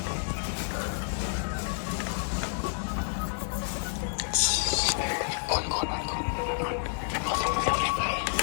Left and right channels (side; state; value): right; silent; digital silence